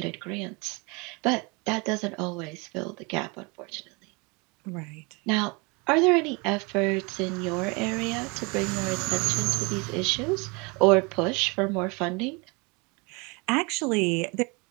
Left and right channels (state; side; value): quieter; left; 29.0 dB